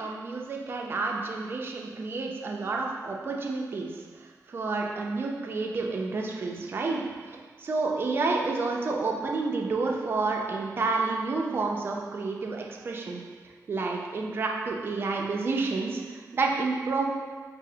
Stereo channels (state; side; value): quieter; left; 3.2 dB